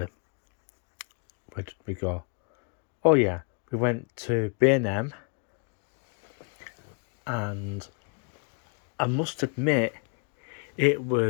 did we go? Oh yeah, we went to B&M, and I must admit it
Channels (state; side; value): quieter; right; 37.7 dB